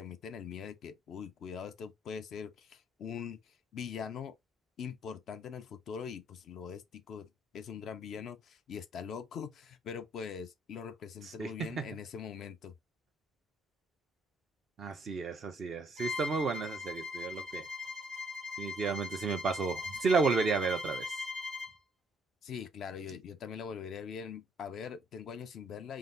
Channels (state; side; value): normal; both; correlation 0.66